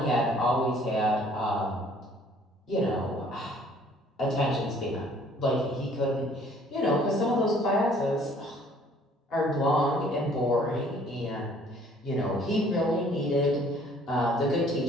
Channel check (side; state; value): both; normal; correlation 0.58